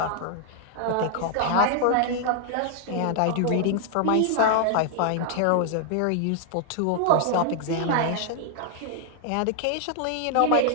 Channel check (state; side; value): different; both; correlation 0.00